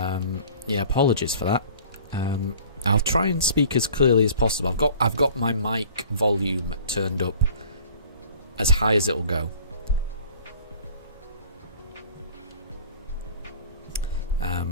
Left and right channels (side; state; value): both; inverted; correlation -0.48